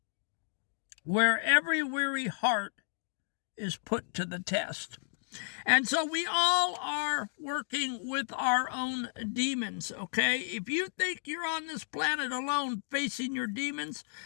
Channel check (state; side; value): silent; right; digital silence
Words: where every weary heart is put to the test. And so we all are working with our own demons, okay? If you think you're on this planet alone facing your demons,